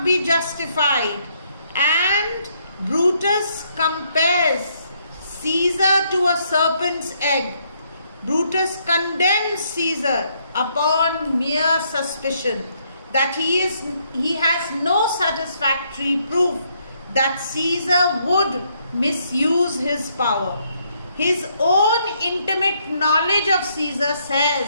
be justified, and Brutus compares Caesar to a serpent's egg. Brutus condemns Caesar upon mere suspicion that he has no satisfactory proof that Caesar would misuse his power. His own intimate knowledge of Caesar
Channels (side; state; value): both; inverted; correlation -0.72